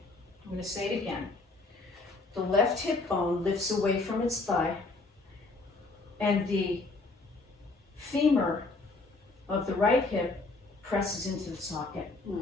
I'm going to say it again. The left hip bone lifts away from its thigh and the femur of the right hip presses into the socket.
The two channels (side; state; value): right; quieter; 3.4 dB